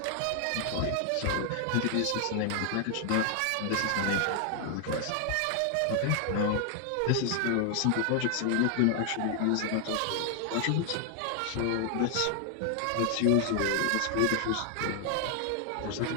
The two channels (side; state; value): both; different; correlation 0.00